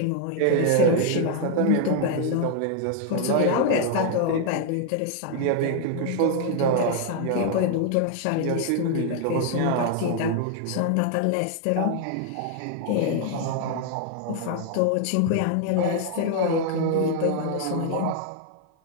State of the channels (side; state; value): both; different; correlation 0.00